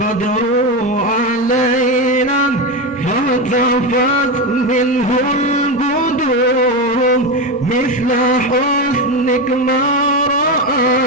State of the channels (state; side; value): normal; both; correlation 0.15